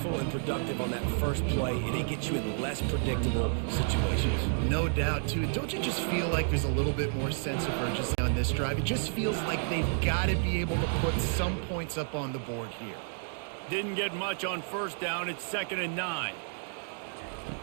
and productive on that first play, and it gets you in less predictable situations. No doubt, too. Don't you just feel like there's a little bit more sense of urgency on this drive? It just feels like they've got to be able to put some points up on the board here. Didn't get much on first down. It's 2nd and 9.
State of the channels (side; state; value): left; silent; 57 dB below the other